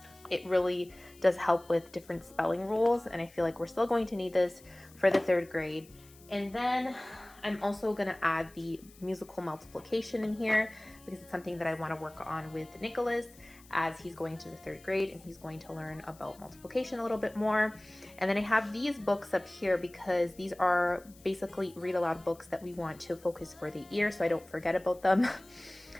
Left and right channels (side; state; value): left; noise; hiss, 25 dB below the sound